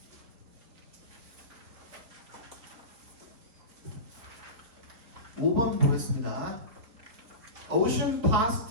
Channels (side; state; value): left; late; 4.1 ms